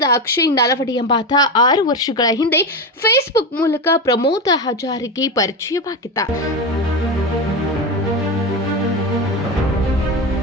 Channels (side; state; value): both; normal; correlation 0.18